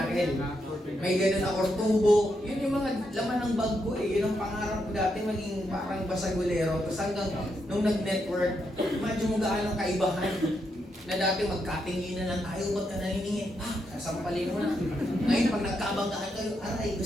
May ganun ako, tubo. Yun yung mga laman ng bag ko eh. Yun ang pangarap ko dati, maging parang basagulero. Tapos hanggang nung nag-network, imagine mo gaano kaibahan na dati magkatinginan lang tayo, ba't ka naniningin? Sasampalin mo na. Ngayon, pag nagkabanggaan kayo, aray,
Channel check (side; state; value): both; normal; correlation 0.81